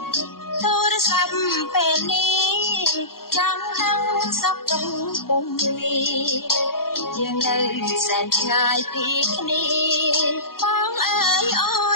ទូរស័ព្ទពេលនេះចង់ដឹងសុខទុក្ខពុំនេះយើងនៅសែនឆ្ងាយពីគ្នាបងអើយអូ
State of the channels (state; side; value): late; right; 0.92 ms